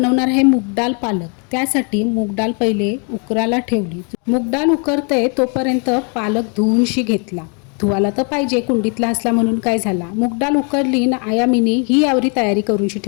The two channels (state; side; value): quieter; right; 37.1 dB